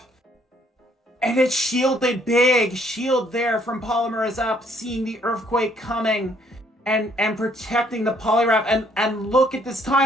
And it's shielded big. Shield there from Polymer is Up, seeing the Earthquake coming. and protecting the Poliwrath. And look at this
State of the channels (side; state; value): both; normal; correlation 0.66